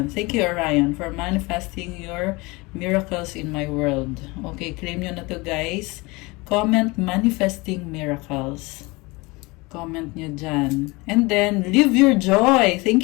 Thank you, Orion, for manifesting your miracles in my world. Okay, claim nyo na to, guys. Comment manifesting miracles. Comment nyo dyan. And then, live your joy.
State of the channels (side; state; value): right; quieter; 24.5 dB